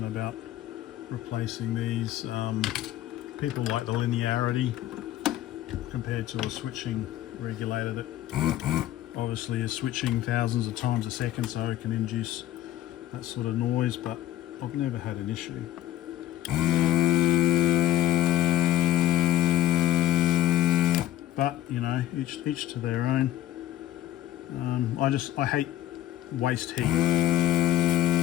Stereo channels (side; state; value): right; quieter; 13.0 dB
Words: about replacing these. People like the linearity compared to a switching regulator that obviously is switching thousands of times a second, so it can induce that sort of noise, but I've never had an issue. But you know, each to their own. I hate waste heat.